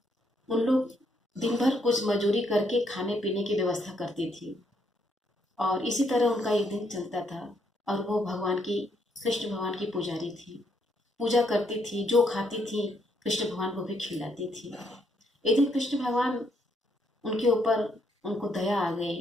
उन लोग दिन भर कुछ मजूरी करके खाने पीने की व्यवस्था करती थी और इसी तरह उनका एक दिन चलता था। और वो भगवान की कृष्ण भगवान की पुजारी थी, पूजा करती थी, जो खाती थी कृष्ण भगवान को भी खिलाती थी। एक दिन कृष्ण भगवान उनके ऊपर उनको दया आ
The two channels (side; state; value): both; normal; correlation 0.74